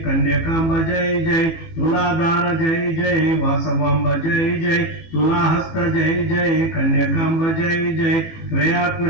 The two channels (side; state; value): right; late; 18 ms